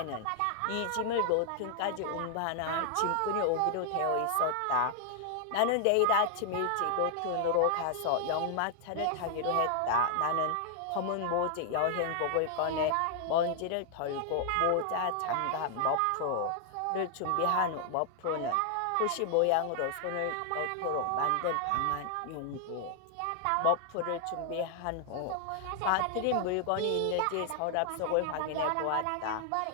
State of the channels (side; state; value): both; different; correlation 0.00